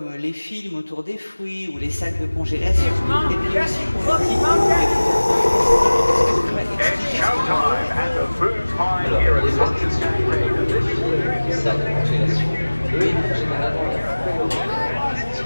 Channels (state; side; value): inverted; both; correlation -1.00